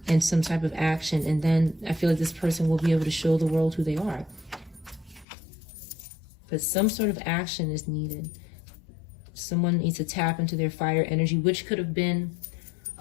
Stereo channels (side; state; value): right; drops out; at 5.2 s